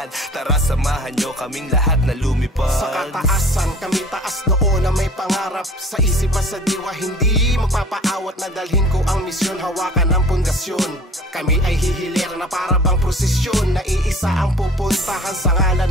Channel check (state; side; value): normal; both; correlation 0.47